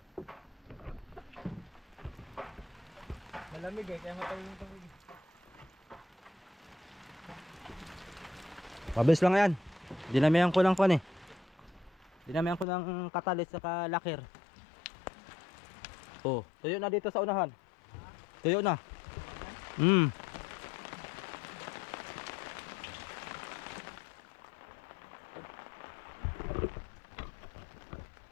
Malamig kaya matayo yung tubig. Pabilis lang yan. Dinamihan ko ng kon eh. Dinamihan ko ng katalis saka lakir. Oh, tuyo na dito sa unahan. Tuyo na.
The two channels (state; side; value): drops out; right; at 12.7 s